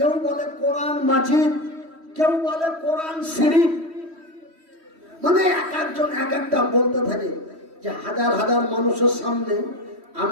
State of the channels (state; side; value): late; left; 3.1 ms